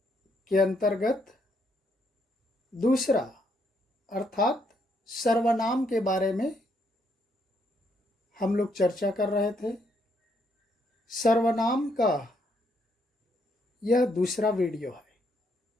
के अंतर्गत दूसरा अर्थात सर्वनाम के बारे में हम लोग चर्चा कर रहे थे। सर्वनाम का यह दूसरा वीडियो है।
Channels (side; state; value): both; normal; correlation 0.73